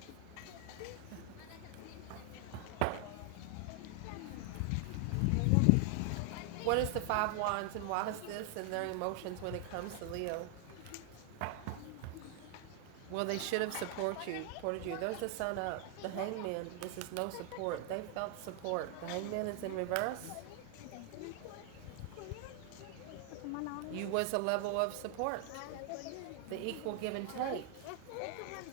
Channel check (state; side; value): different; both; correlation 0.00